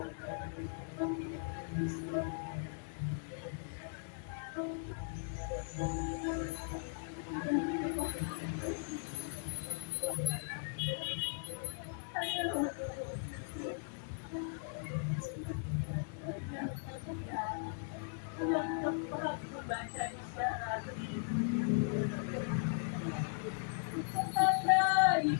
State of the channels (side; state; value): right; silent; digital silence